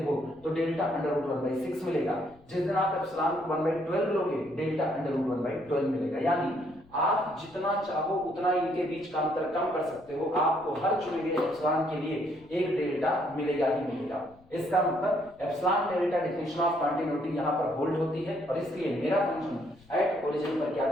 हो तो डेल्टा अंडर रूट 1/6 मिलेगा, जिस दिन आप एप्सिलॉन को 1/12 लोगे डेल्टा अंडर रूट 1/12 मिलेगा। यानी आप जितना चाहो उतना इनके बीच का अंतर कम कर सकते हो, आपको हर चुने गए एप्सिलॉन के लिए एक डेल्टा मिलेगा ही मिलेगा। इसका मतलब epsilon delta definition of continuity यहां पर होल्ड होती है, और इसलिए मेरा फंक्शन एट ओरिजिन पर क्या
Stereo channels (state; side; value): noise; left; rumble, 27 dB below the sound